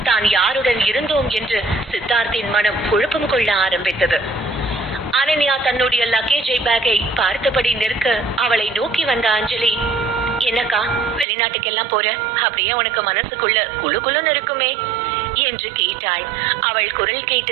தான் யாருடன் இருந்தோம் என்று சித்தார்த்தின் மனம் குழப்பம் கொள்ள ஆரம்பித்தது. அனன்யா தன்னுடைய லக்கேஜை பேக்கை பார்த்தபடி நிற்க அவளை நோக்கி வந்த அஞ்சலி, என்னக்கா வெளிநாட்டுக்கெல்லாம் போற? அப்படியே உனக்கு மனசுக்குள்ள குழு குழுன்னு இருக்குமே என்று கேட்டாள். அவள் குரல்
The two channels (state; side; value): drops out; left; at 11.2 s